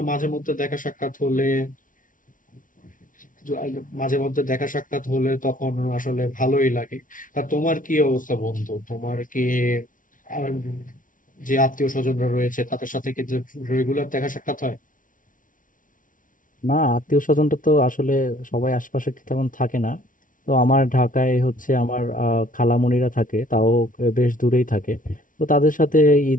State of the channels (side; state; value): right; late; 0.38 ms